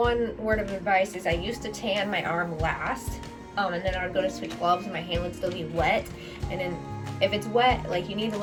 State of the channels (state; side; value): identical; both; correlation 1.00